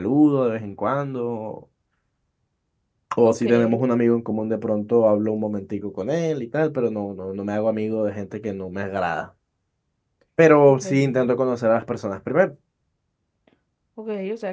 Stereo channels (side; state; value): both; identical; correlation 1.00